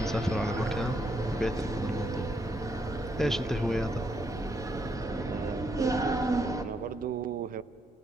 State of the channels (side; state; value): both; normal; correlation 0.76